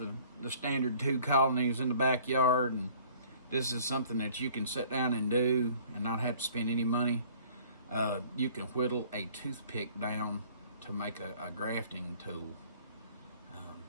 standard 2 colonies in the backyard, and this is something that you can sit down and do and not have to spend any money. You can whittle a toothpick down to make a grafting tool.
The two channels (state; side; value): inverted; both; correlation -0.53